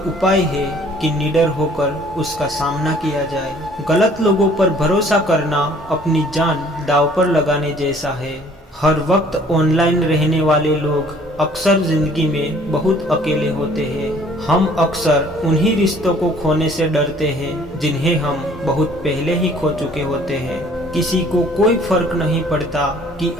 है कि निडर होकर उसका सामना किया जाए। गलत लोगों पर भरोसा करना अपनी जान दांव पर लगाने जैसा है। हर वक्त ऑनलाइन रहने वाले लोग अक्सर जिंदगी में बहुत अकेले होते हैं। हम अक्सर उन्हीं रिश्तों को खोने से डरते हैं जिन्हें हम बहुत पहले ही खो चुके होते हैं। किसी को कोई फर्क नहीं पड़ता कि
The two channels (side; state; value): both; normal; correlation 0.56